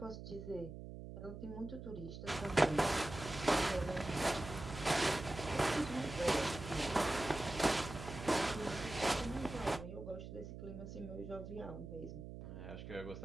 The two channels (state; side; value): noise; right; hum, 10 dB below the sound